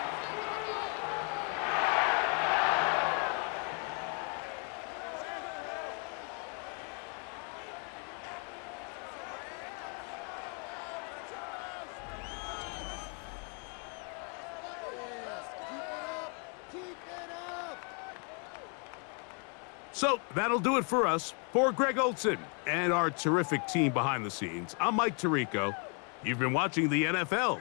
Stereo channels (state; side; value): quieter; right; 39.0 dB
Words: So that'll do it for us. For Greg Olson and our terrific team behind the scenes, I'm Mike Tirico. You've been watching the NFL